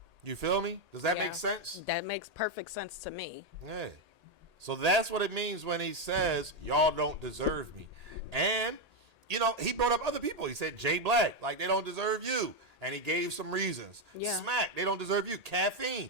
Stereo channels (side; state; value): left; late; 1.8 ms